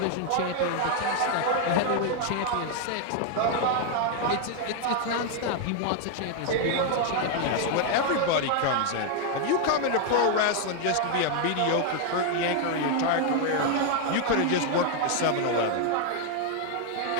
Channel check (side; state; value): both; different; correlation 0.00